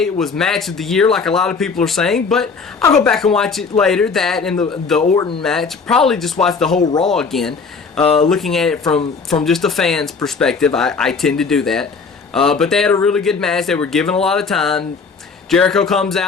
it was match of the year like a lot of people are saying, but I'll go back and watch it later. That and the Orton match. Probably just watch the whole Raw again. Looking at it from just a fan's perspective. I tend to do that. But they had a really good match. They were given a lot of time. Jericho comes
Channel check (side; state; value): right; quieter; 4.9 dB